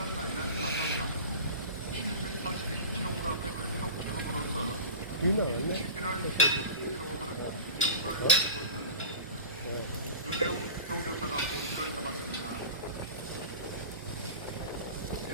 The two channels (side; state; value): both; inverted; correlation -0.35